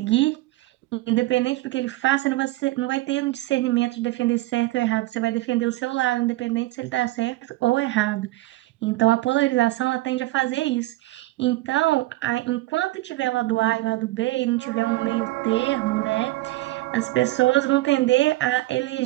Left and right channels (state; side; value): quieter; left; 18.6 dB